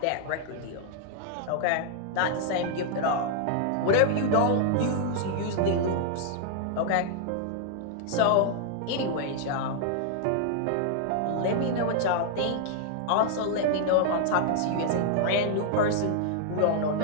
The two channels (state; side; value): different; both; correlation 0.00